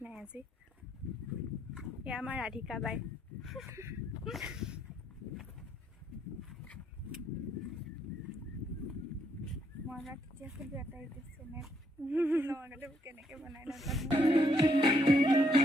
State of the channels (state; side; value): normal; both; correlation 0.73